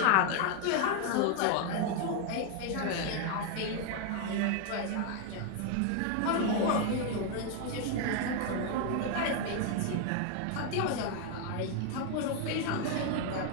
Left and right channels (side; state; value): both; different; correlation 0.01